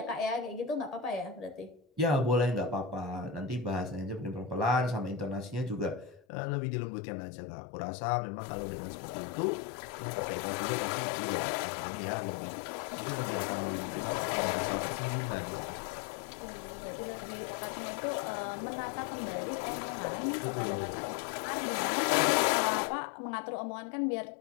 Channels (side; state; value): right; drops out; at 6.2 s